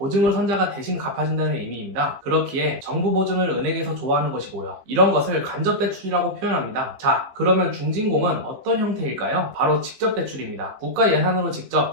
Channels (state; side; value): late; left; 15 ms